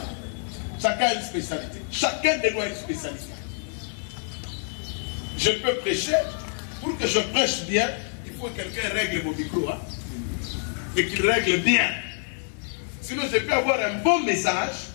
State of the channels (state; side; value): silent; right; 58 dB below the other